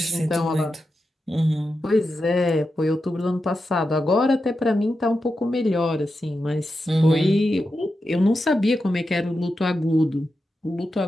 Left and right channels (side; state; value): both; normal; correlation 0.89